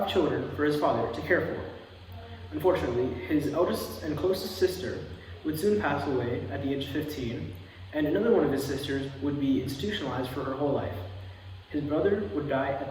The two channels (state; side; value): identical; both; correlation 1.00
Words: children for his father to care for. Unfortunately, his eldest and closest sister would soon pass away at the age of 15, and another one of his sisters would be institutionalized for her whole life. His brother would die